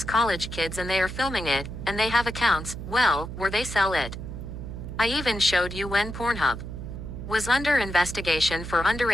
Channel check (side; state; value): right; noise; hum, 8 dB below the sound